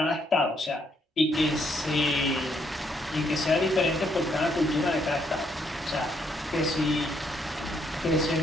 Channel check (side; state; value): both; normal; correlation 0.73